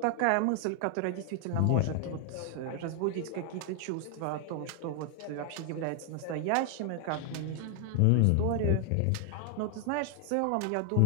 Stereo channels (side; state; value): both; different; correlation 0.00